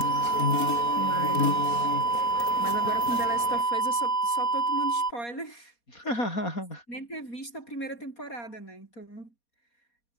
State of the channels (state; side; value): late; right; 4.2 ms